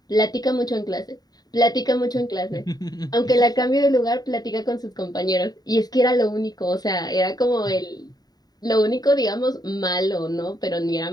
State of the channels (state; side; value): late; right; 0.19 ms